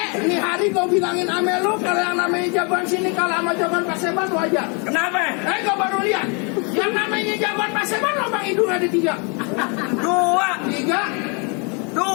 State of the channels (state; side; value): quieter; right; 34.4 dB